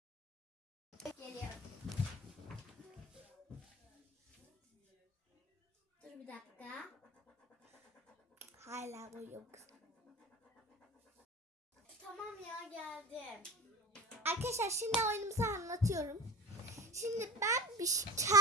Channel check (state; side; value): normal; both; correlation 0.37